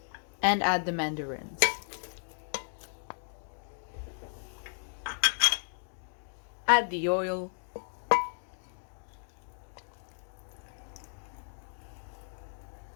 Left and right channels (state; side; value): silent; right; digital silence